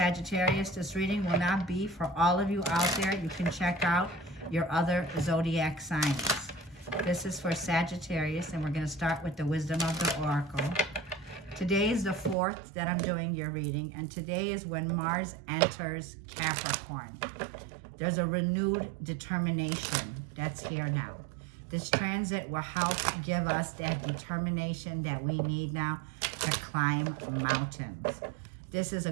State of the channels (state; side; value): drops out; left; at 12.4 s